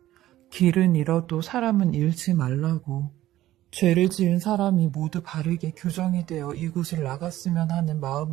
길은 잃어도 사람은 잃지 말라고. 죄를 지은 사람이 모두 바르게 교정이 되어 이곳을 나갔으면 하는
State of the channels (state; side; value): quieter; left; 14.5 dB